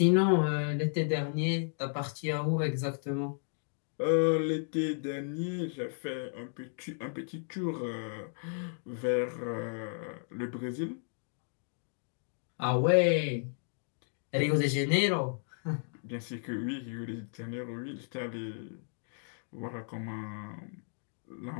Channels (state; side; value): silent; right; digital silence